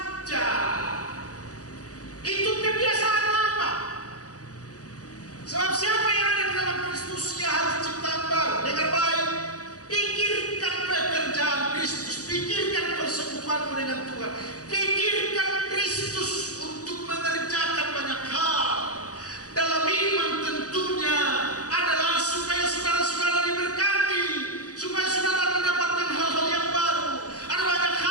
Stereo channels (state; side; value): late; right; 0.67 ms